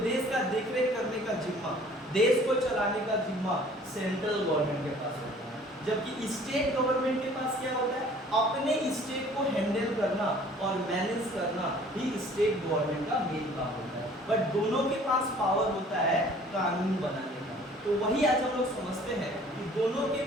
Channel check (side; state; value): both; normal; correlation 0.52